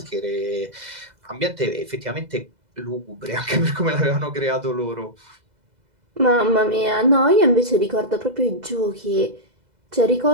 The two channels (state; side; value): late; left; 2.0 ms